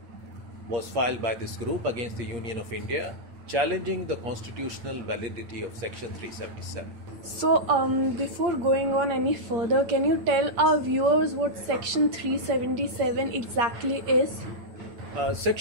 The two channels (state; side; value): late; left; 8.6 ms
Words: was filed by this group against the Union of India, challenging the constitutional validity of Section 377. So, before going on any further, can you tell our viewers what Section 377 exactly is?